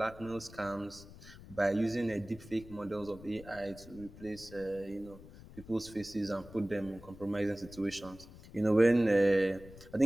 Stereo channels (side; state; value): left; noise; rumble, 18 dB below the sound